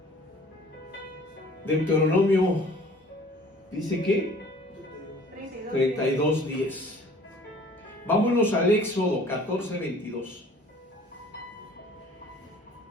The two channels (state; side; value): normal; both; correlation 0.51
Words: Deuteronomio dice que 32:10. Vámonos al Éxodo 14:22.